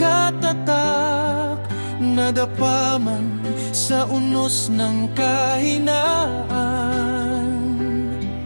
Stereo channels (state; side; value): inverted; both; correlation -1.00